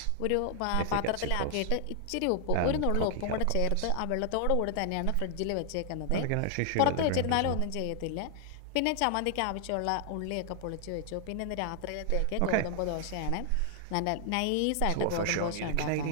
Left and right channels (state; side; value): different; both; correlation 0.00